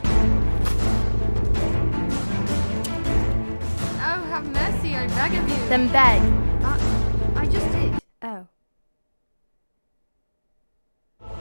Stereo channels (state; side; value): inverted; both; correlation -1.00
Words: Oh, have mercy, I beg of you. Then beg. I just did. Oh.